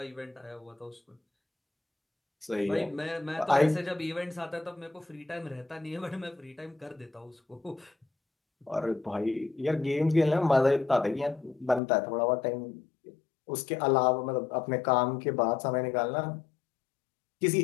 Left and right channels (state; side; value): drops out; right; at 11.8 s